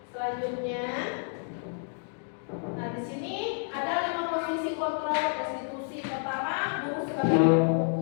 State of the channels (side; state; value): right; silent; 58 dB below the other